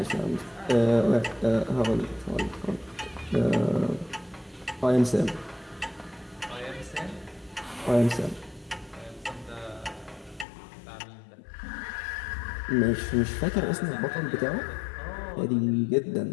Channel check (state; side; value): drops out; right; at 10.5 s